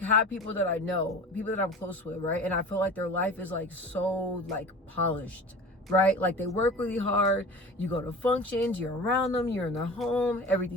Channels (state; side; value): normal; both; correlation 0.37